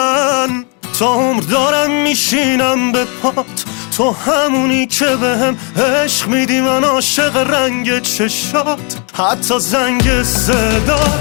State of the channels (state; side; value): quieter; right; 36.2 dB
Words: تا عمر دارم میشینم به پات. تو همونی که بهم عشق میدی، من عاشق رنگ چشات حتی زنگ